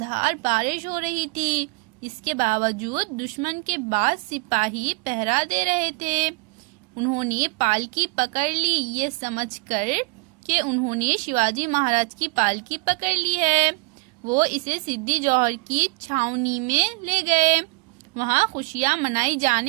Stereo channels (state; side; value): quieter; left; 27.3 dB